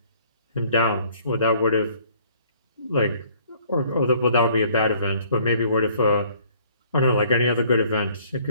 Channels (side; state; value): both; inverted; correlation -0.58